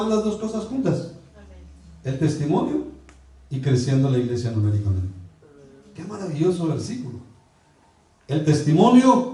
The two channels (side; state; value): both; identical; correlation 1.00